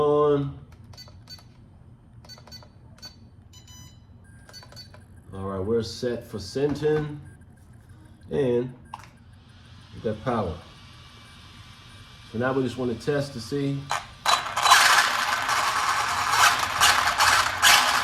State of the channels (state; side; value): identical; both; correlation 1.00